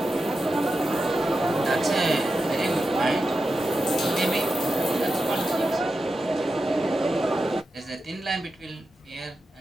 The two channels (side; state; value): both; normal; correlation 0.90